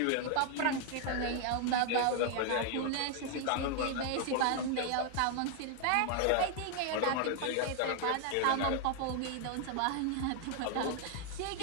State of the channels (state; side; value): different; both; correlation 0.00